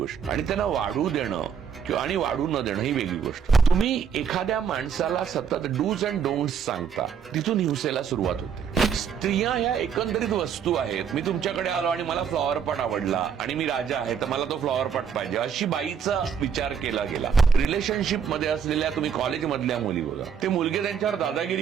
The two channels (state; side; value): quieter; left; 7.2 dB